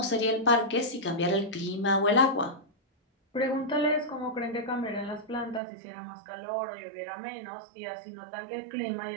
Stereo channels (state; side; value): drops out; left; at 5.6 s